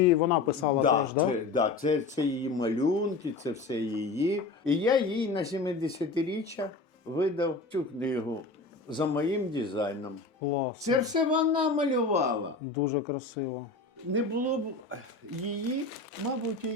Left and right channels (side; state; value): right; quieter; 3.7 dB